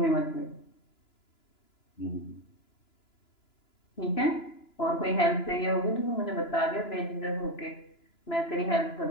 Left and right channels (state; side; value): late; right; 2.9 ms